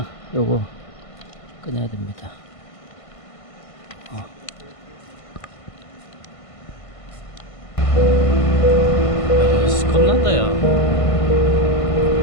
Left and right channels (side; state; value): right; late; 1.5 ms